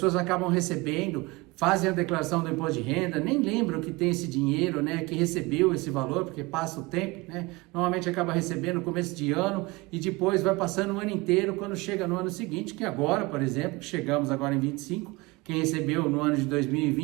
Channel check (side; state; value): left; quieter; 23.6 dB